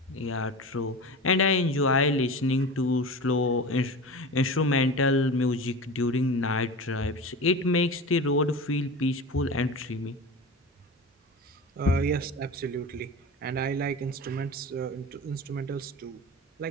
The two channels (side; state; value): both; normal; correlation 0.30